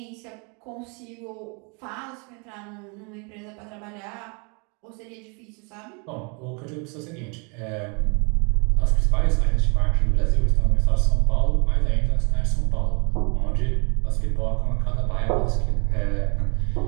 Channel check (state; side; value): quieter; left; 33.6 dB